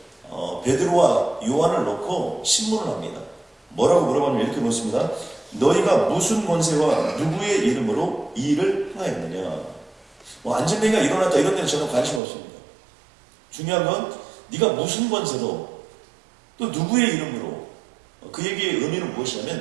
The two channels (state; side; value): drops out; left; at 12.2 s